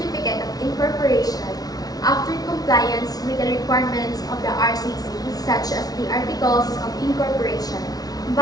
of incorporation after compliance with the requirements of the RCC such as the Articles of Incorporation,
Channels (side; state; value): right; late; 0.18 ms